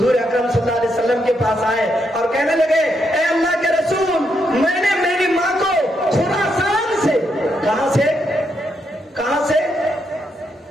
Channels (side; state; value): both; normal; correlation 0.79